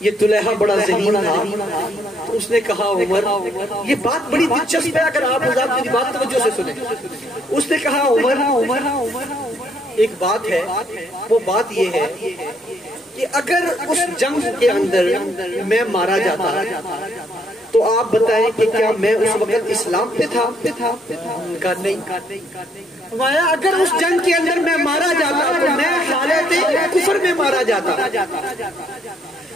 یہ طلیحہ بڑا ذہین تھا، تو اس نے کہا عمر، یہ بات بڑی دلچسپ ہے، اگر آپ میری بات توجہ سے سنیں۔ اس نے کہا عمر، ایک بات ہے، وہ بات یہ ہے کہ اگر اس جنگ کے اندر میں مارا جاتا تو آپ بتائیں کہ کیا میں اس وقت اسلام پہ تھا؟ کہا نہیں۔ فرمایا اگر اس جنگ کے اندر میں مارا جاتا تو میں حالت کفر میں مارا جاتا،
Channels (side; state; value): both; normal; correlation 0.69